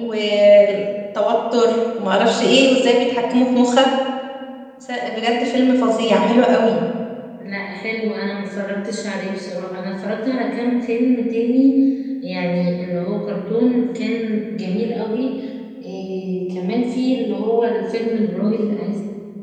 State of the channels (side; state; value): both; identical; correlation 1.00